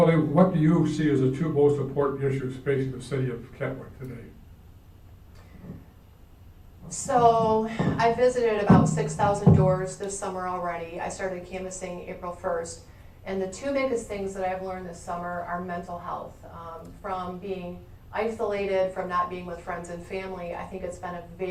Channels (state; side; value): identical; both; correlation 1.00